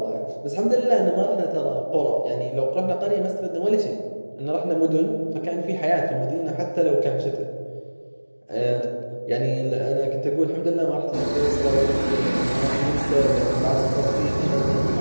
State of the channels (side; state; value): both; inverted; correlation -1.00